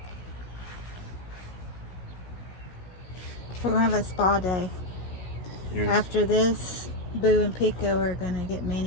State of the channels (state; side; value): late; right; 16 ms